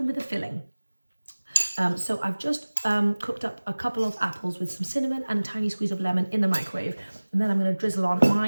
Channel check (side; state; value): both; inverted; correlation -1.00